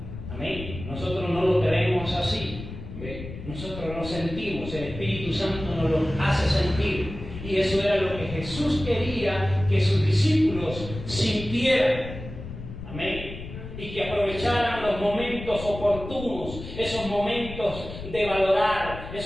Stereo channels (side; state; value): left; noise; rumble, 11 dB below the sound